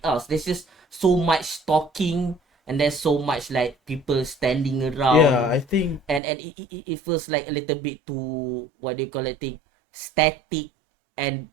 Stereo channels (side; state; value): left; drops out; at 6.2 s